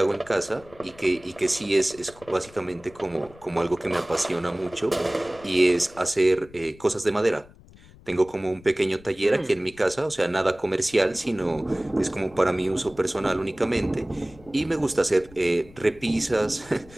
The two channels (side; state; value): left; noise; rumble, 23 dB below the sound